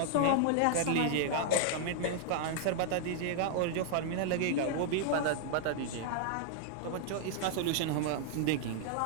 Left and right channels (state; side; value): different; both; correlation -0.01